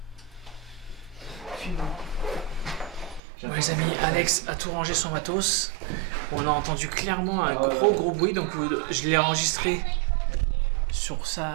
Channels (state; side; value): drops out; left; at 3.2 s